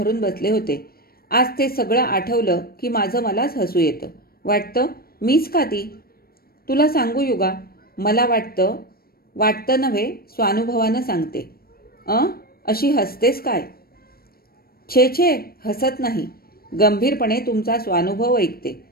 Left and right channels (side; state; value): right; late; 0.44 ms